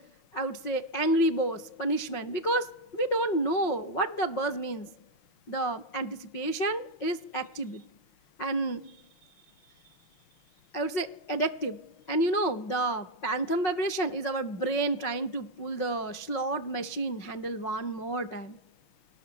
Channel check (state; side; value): late; right; 5.5 ms